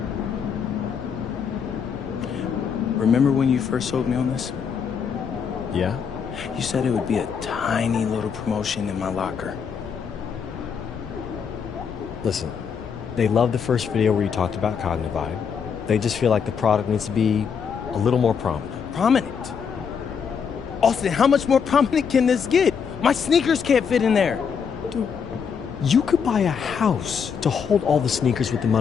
Remember when you first sold me on this? Yeah? You said it would be a tiny little promotion in my locker. Listen, they loved the first video where you talked about Cognivibe. They just feel like the product needs to be a little more prominent. Prominent? Austin, how much more prominent can this get? My sneakers can't fit in there. Dude, you could buy a house to hold all the sneakers with the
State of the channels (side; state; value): right; quieter; 6.7 dB